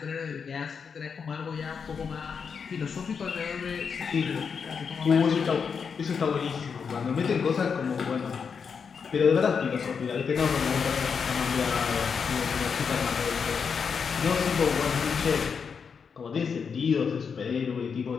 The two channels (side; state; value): right; quieter; 6.1 dB